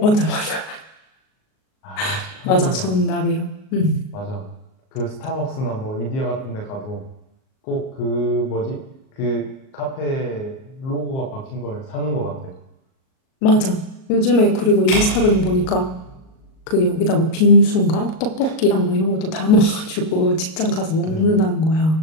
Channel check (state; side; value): late; right; 38 ms